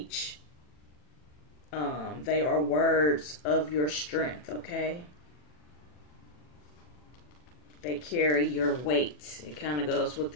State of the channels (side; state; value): right; late; 40 ms